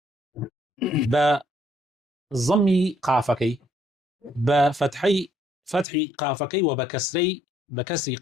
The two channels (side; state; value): right; drops out; at 5.9 s